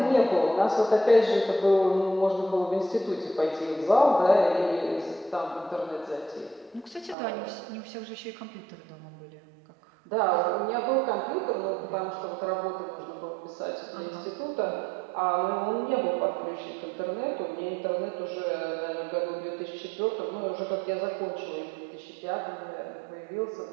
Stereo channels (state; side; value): drops out; left; at 7.2 s